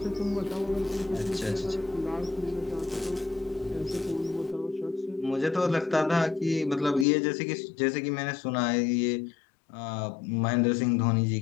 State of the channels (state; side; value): drops out; right; at 7.1 s